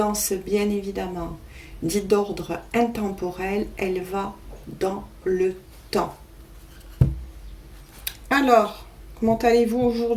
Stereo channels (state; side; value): identical; both; correlation 1.00